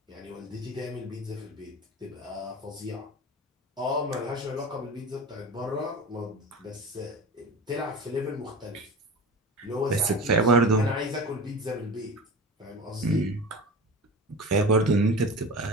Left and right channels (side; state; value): both; normal; correlation 0.33